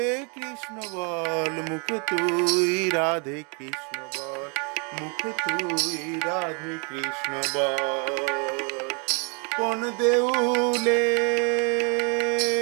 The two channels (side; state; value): left; quieter; 35.8 dB